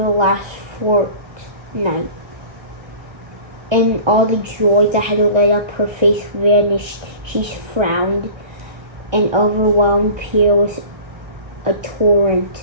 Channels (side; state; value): left; late; 1.3 ms